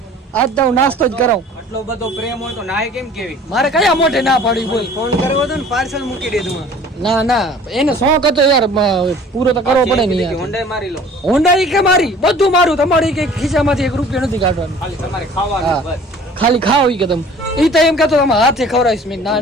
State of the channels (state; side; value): normal; both; correlation 0.49